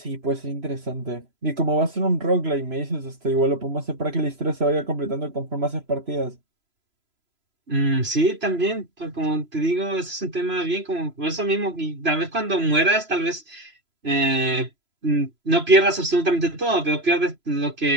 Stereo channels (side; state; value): left; late; 3.0 ms